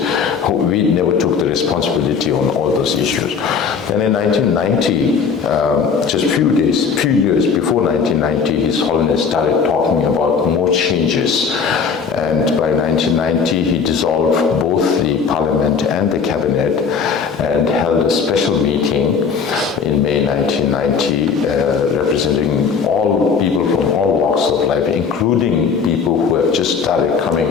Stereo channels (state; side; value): quieter; right; 5.9 dB